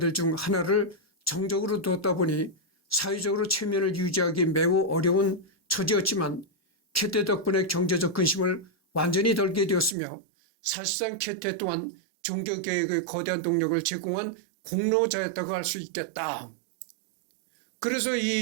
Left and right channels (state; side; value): drops out; left; at 10.0 s